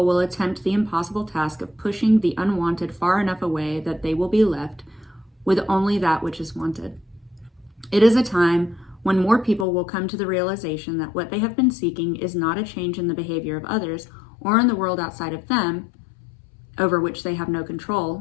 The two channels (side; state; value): right; drops out; at 9.7 s